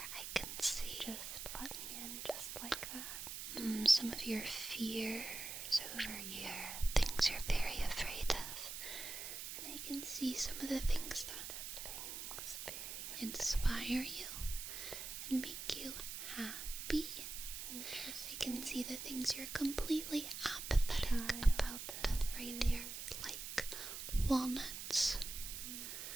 I can see Just let me in just like that. some of your fears over here, things you're very afraid of. And I can see some of the things that inspire you and make you happy. I can see the things you're completely apathetic about right here, like walnuts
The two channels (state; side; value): noise; right; hiss, 7 dB below the sound